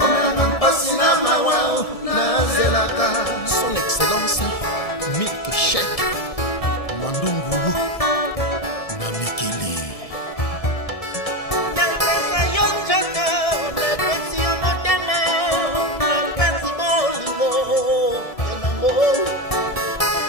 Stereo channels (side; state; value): right; late; 1.7 ms